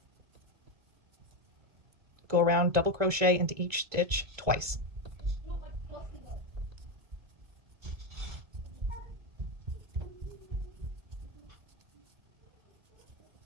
go around, double crochet into each stitch twice.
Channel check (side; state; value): left; late; 2.0 ms